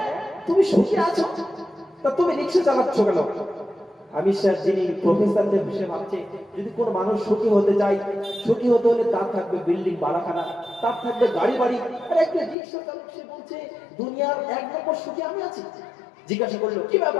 তুমি সুখী আছো, তা তুমি রিকশা চালাচ্ছ কেন? আমি স্যার যিনি প্রফেসরদের বিষয়ে ভাবছে যদি কোন মানুষ সুখী হতে চায়, সুখী হতে হলে তার থাকবে বিল্ডিং বাড়াখানা, তার থাকবে গাড়ি বাড়ি, আর একটা রিকশা চালক সে বলছে দুনিয়ার এক নম্বর সুখী আমি আছি। জিজ্ঞাসা করলো কি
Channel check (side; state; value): right; drops out; at 12.6 s